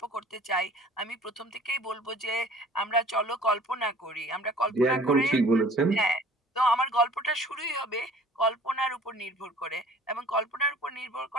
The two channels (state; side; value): normal; both; correlation 0.49